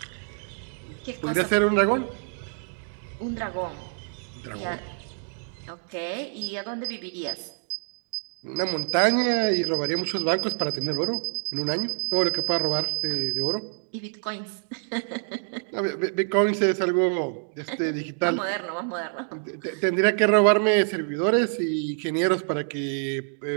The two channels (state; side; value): silent; left; digital silence